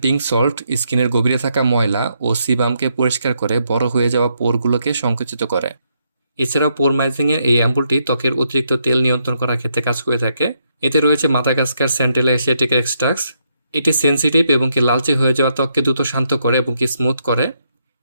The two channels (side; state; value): both; inverted; correlation -0.77